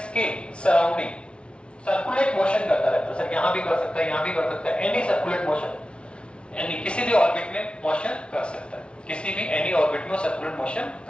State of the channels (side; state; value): right; late; 0.058 ms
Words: के सराउंडिंग सर्कुलेट मोशन करता रहता है। सर यहाँ भी कर सकता है, यहाँ भी कर सकता है, एनी सर्कुलेट मोशन, यानी किसी भी ऑर्बिट में मोशन कर सकता है, किसी भी एनी ऑर्बिट में सर्कुलेट मोशन